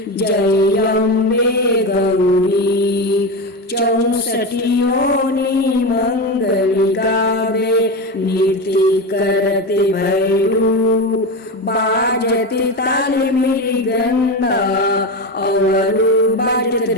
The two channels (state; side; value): normal; both; correlation 0.19